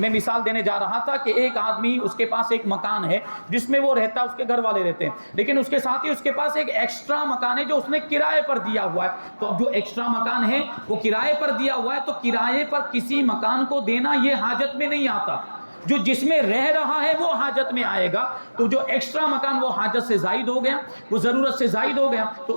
مثال دینے جا رہا تھا کہ ایک آدمی، اس کے پاس ایک مکان ہے جس میں وہ رہتا ہے، اس کے گھر والے رہتے ہیں، لیکن اس کے ساتھ ہی اس کے پاس ایک ایکسٹرا مکان ہے جو اس نے کرائے پر دیا ہوا ہے۔ تو اب جو ایکسٹرا مکان ہے وہ کرائے پر دیا ہوا ہے، تو کرائے پر کسی مکان کو دینا یہ حاجت میں نہیں آتا۔ جو جس میں رہ رہا ہے وہ حاجت میں آئے گا، تو جو ایکسٹرا مکان وہ حاجت سے زائد ہو گیا، وہ ضرورت سے زائد ہو گیا، تو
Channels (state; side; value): inverted; both; correlation -1.00